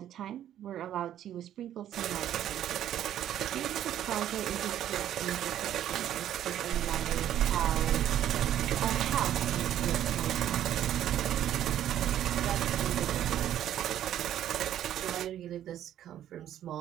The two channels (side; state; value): left; quieter; 11.2 dB